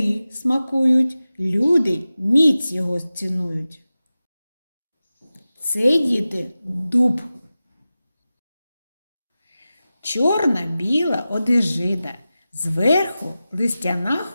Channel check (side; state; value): both; inverted; correlation -0.95